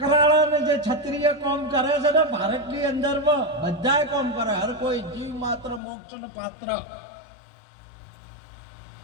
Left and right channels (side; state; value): right; drops out; at 5.8 s